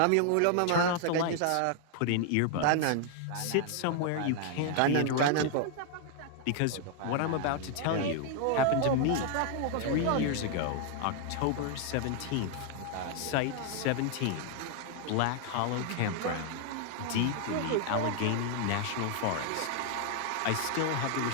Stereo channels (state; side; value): different; both; correlation 0.00